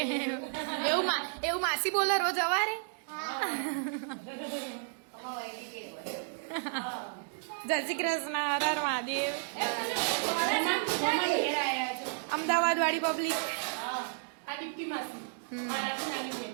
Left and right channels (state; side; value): silent; left; digital silence